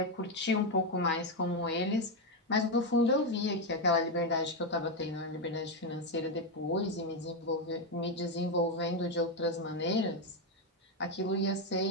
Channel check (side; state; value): both; normal; correlation 0.06